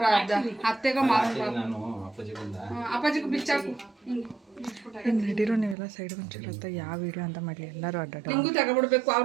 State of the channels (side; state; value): left; drops out; at 5.8 s